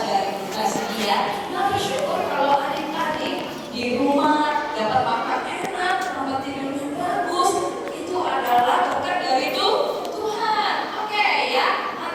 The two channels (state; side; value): identical; both; correlation 1.00